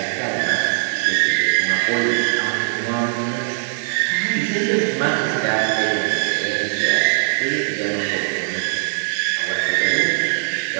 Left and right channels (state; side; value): silent; left; digital silence